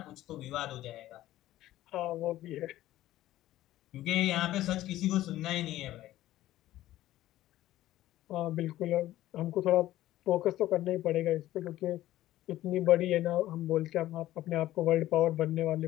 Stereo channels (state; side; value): quieter; right; 14.7 dB